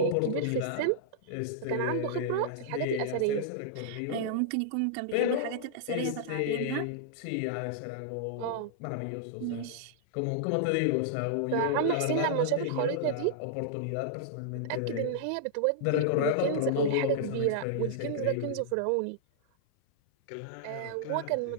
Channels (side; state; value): both; different; correlation -0.02